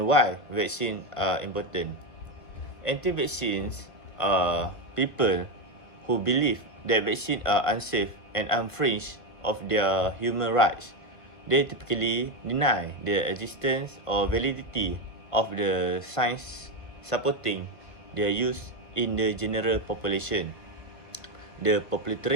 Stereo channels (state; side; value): late; right; 1.5 ms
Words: why vaccines are important. Anti-vaccines are people who believe that vaccines are unsafe and infringe of their human rights. They typically deny the existence or validity of the science supporting their use in the general population. The